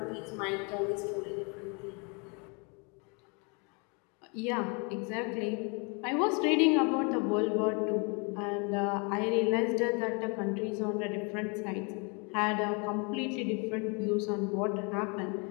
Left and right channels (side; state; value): right; quieter; 33.2 dB